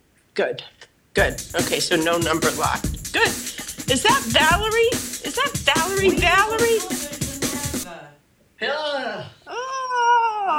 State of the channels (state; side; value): identical; both; correlation 1.00